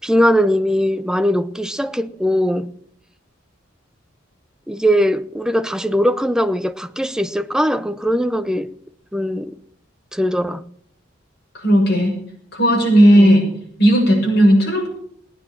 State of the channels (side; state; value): both; normal; correlation 0.87